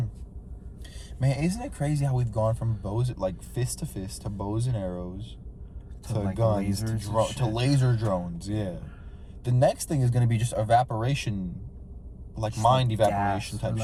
Man, isn't it crazy how we've gone from bows, like fist to fist, to bows and arrows, to like guns, to, lasers and to shit. laser drones? Yeah. The next thing is going to be just evaporation, like Just mind like evaporation gas, or type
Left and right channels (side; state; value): both; identical; correlation 1.00